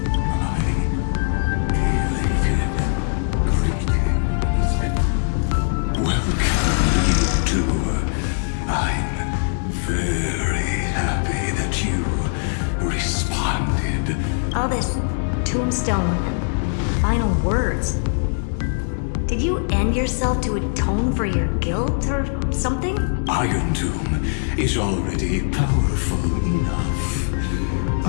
Welcome, you two. I'm very happy that you responded. All this tombstone and final words. Did you end yourself to atone for your guilt or something? Iron Tomb is already powerful enough.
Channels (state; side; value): silent; right; 63 dB below the other